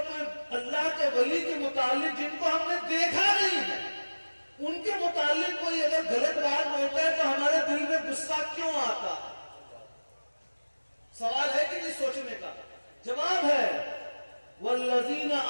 کوئی اللہ کے ولی کے متعلق جن کو ہم نے دیکھا نہیں ہے ان کے متعلق کوئی اگر غلط بات ہوتا ہے تو ہمارے دل میں غصہ کیوں آتا ہے؟ سوال ہے کہ نہیں سوچنے کا؟ جواب ہے والذین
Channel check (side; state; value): both; inverted; correlation -1.00